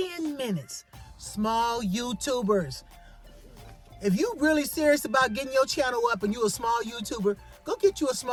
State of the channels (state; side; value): identical; both; correlation 1.00